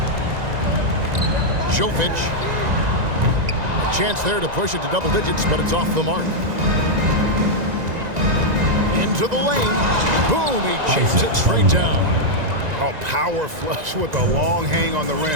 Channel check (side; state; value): left; late; 1.9 ms